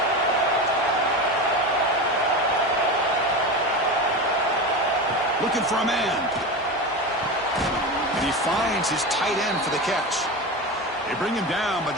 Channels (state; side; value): normal; both; correlation 0.24